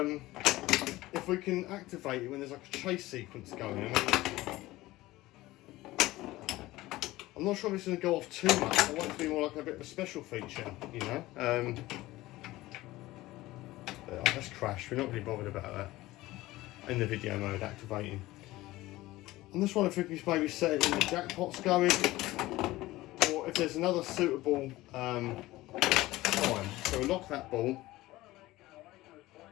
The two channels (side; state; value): right; quieter; 17.9 dB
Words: if we can activate it when there's like a chase sequence going. I'm not sure if it's going to go off too much. I want it to be more like a bit of a special feature, you know. Let's crash. We're not really bothered about that in the video mode activating. I'm just wondering if we can maybe set it in the jackpots going, or if there's another suitable time. So we'll lock that ball.